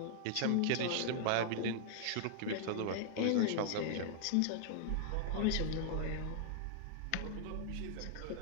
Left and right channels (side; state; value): both; different; correlation -0.01